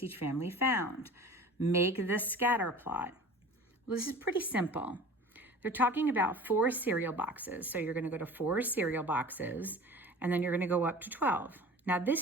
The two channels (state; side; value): normal; both; correlation 0.40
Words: each family found. Make the scatter plot. Well, this is pretty simple. They're talking about 4 cereal boxes. So you're going to go to 4 cereal boxes, and then you're going to go up to 12. Now,